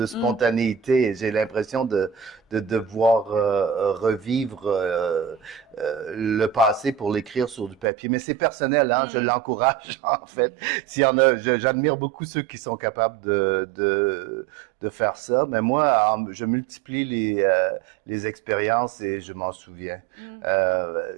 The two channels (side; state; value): left; drops out; at 7.9 s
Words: spontanéité. J'ai l'impression de devoir revivre le passé pour l'écrire sur du papier. Mais c'est personnel, hein, je l'encourage, en fait. S'il y en a, j'admire beaucoup ceux qui sont capables de faire ça. Mais moi, je multiplie les expériences et je m'en souviens.